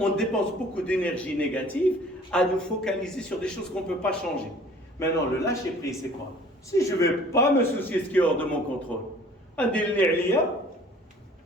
dépense beaucoup d'énergie négative à nous focaliser sur des choses qu'on ne peut pas changer. Maintenant, le lâcher-prise, c'est quoi? Si je ne vais pas me soucier de ce qui est hors de mon contrôle,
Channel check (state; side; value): normal; both; correlation 0.51